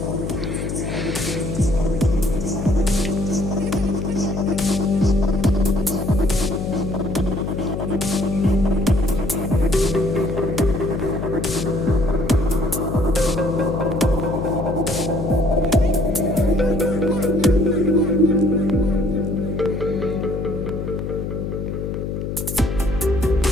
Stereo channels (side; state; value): left; noise; hum, 4 dB below the sound